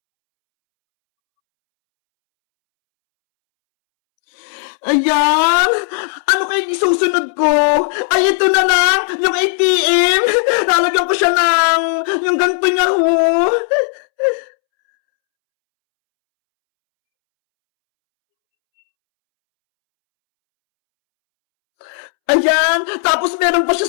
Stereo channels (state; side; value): silent; right; 70 dB below the other